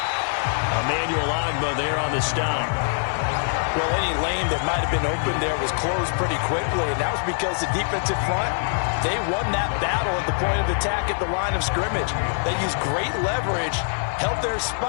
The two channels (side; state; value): right; silent; digital silence